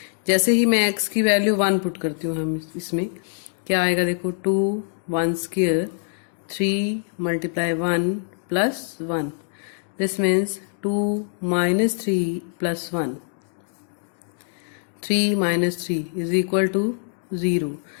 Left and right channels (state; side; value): silent; right; digital silence